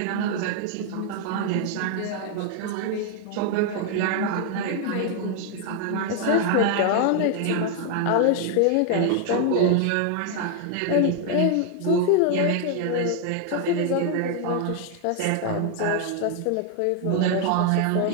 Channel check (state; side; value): different; both; correlation 0.00